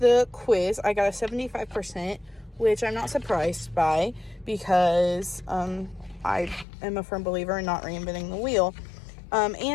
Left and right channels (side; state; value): right; drops out; at 6.7 s